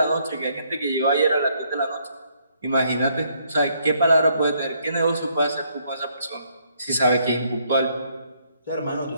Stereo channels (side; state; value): both; inverted; correlation -0.70